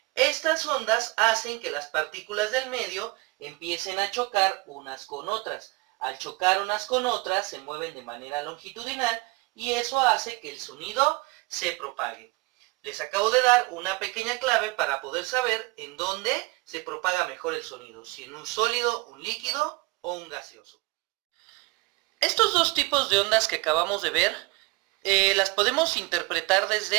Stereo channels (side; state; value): left; quieter; 24.2 dB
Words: estas ondas hacen que las partículas del medio empiecen a chocar unas con otras. Al chocar unas con otras se mueven de manera longitudinal y eso hace que el sonido se propague. Les acabo de dar una pequeña clave para poder saber en dónde se propaga mejor el sonido, si en un sólido, un líquido o un gaseoso. Estos dos tipos de ondas que acabamos de ver, las podemos interpretar